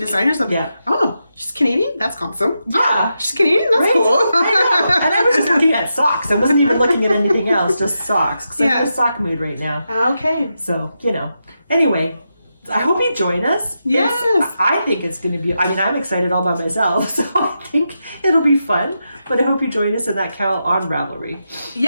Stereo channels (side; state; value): both; inverted; correlation -0.86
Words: I'm like, oh, she's Canadian? That's awesome. Yeah. Oh, she's Canadian? That's cool. I know. And I was just looking at socks. I wasn't even looking at anything else, just socks. Because I'm in a sock mood right now. Okay. So, Anyway, I hope you join us. Yes. I think it's going to be, I'm excited all by myself, so I think it'll be fun. But I hope you join us in that KAL on Ravelry.